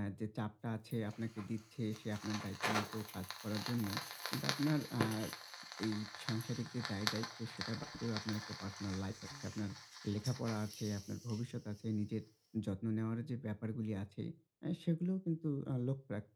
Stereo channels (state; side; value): identical; both; correlation 1.00